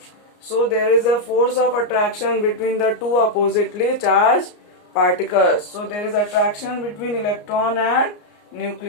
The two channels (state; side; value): late; right; 34 ms